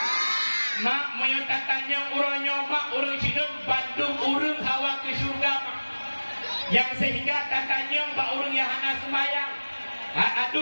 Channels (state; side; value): inverted; both; correlation -1.00